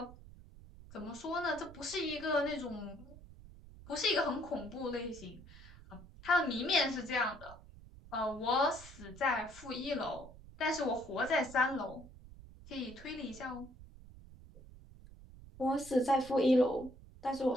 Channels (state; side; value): noise; right; rumble, 18 dB below the sound